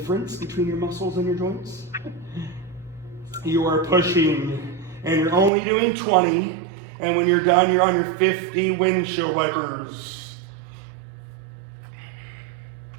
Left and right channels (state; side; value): drops out; left; at 5.5 s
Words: between your muscles and your joints. You are pushing, and you're only doing 20, and when you're done, you're on your 50 windshield wipers.